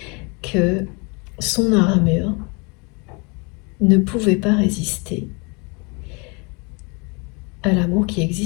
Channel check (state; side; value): quieter; right; 31.0 dB